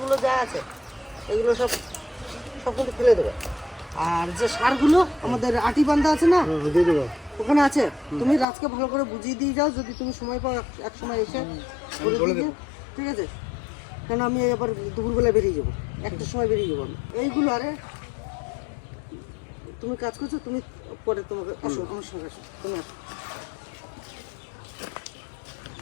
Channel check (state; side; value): drops out; right; at 8.5 s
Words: যা আছে এগুলো সব কিন্তু ফেলে দেবে। আর যে সারগুলো আমাদের আটি বান্ধা আছে না, ওখানে আছে, তুমি রাজকে ভালো করে বুঝিয়ে দিয়ে যাও, যদি তুমি সময় পাও এক সময় এসে করে দিয়ে, ঠিক আছে। কেন আমি এবার দুপুরবেলা বেরিয়ে যাবো, একটার সময় বেরিয়ে যাবো আমি। এইগুলো আরে তুমি কাজ করছো, তুমি পরে তোমাকে আসো, আমার সঙ্গে আসো, তুমি আসো।